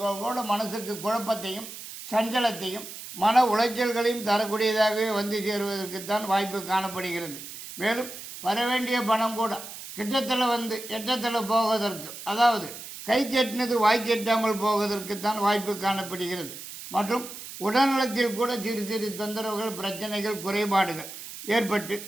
மனசுக்கு குழப்பத்தையும் சஞ்சலத்தையும் மன உளைச்சல்களையும் தரக்கூடியதாகவே வந்து சேருவதற்குத்தான் வாய்ப்பு காணப்படுகிறது. மேலும் வரவேண்டிய பணம் கூட கிட்டத்தில் வந்து எட்டத்தில் போவதற்கு, அதாவது கை கெட்டினது வாய் கெட்டாமல் போவதற்குத்தான் வாய்ப்பு காணப்படுகிறது. மற்றும் உடல்நலத்தில் கூட சிறு சிறு தொந்தரவுகள் பிரச்சனைகள் குறைபாடுகள் ஏற்பட்டு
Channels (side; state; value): right; noise; hiss, 12 dB below the sound